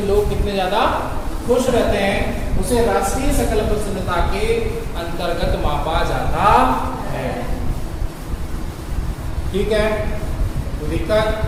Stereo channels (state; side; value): identical; both; correlation 1.00